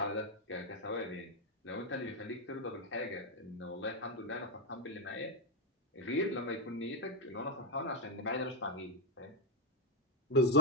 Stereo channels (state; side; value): normal; both; correlation 0.04